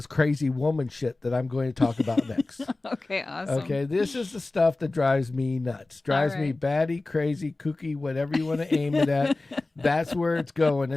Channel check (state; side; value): quieter; right; 3.1 dB